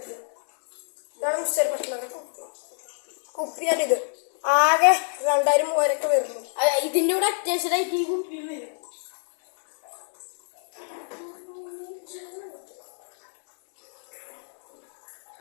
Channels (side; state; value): right; silent; digital silence